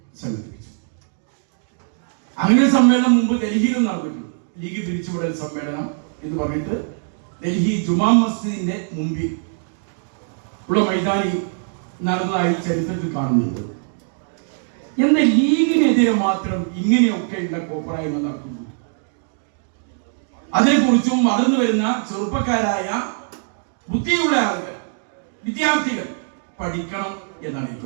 സംഘടിപ്പിച്ചു. അങ്ങനെ സമ്മേളനം മുമ്പ് ഡൽഹിയിലും നടന്നിട്ടുണ്ട്. ലീഗ് പിരിച്ചുവിടൽ സമ്മേളനം എന്ന് പറഞ്ഞിട്ട് ഡൽഹി ജുമാ മസ്ജിദിന്റെ മുമ്പിൽ ഉള്ള മൈതാനി നടന്നതായി ചരിത്രത്തിൽ കാണുന്നുണ്ട്. എന്നാൽ ലീഗിനെതിരെ മാത്രം ഇങ്ങനെയൊക്കെയുള്ള കോപ്രായ്മ നടക്കുന്നു. അതിനെക്കുറിച്ചും വളർന്നു വരുന്ന ചെറുപ്പക്കാരായ ബുദ്ധിയുള്ള ആളുകൾ, വിദ്യാർത്ഥികൾ പഠിക്കണം എന്നാണ്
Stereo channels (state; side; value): silent; left; digital silence